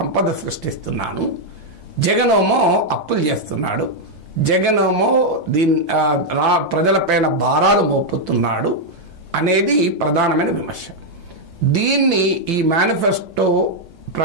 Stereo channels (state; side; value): late; left; 1.2 ms